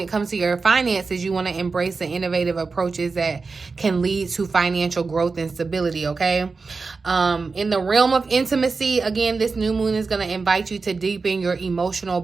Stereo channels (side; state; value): left; quieter; 4.3 dB